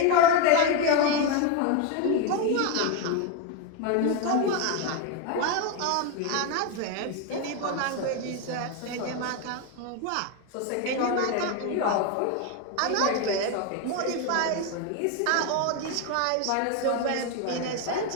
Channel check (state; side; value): different; both; correlation 0.02